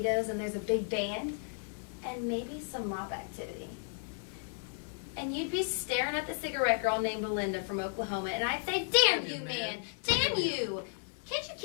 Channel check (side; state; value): right; silent; 55 dB below the other